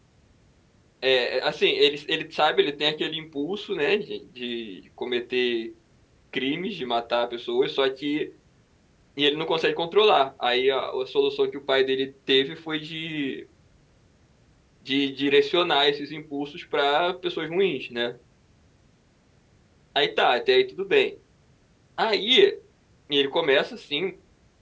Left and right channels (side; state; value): both; identical; correlation 1.00